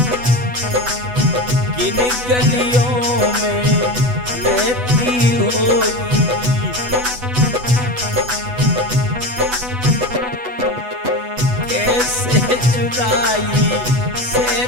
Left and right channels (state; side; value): late; left; 8.1 ms